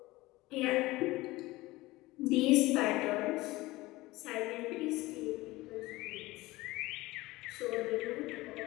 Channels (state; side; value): quieter; right; 19.5 dB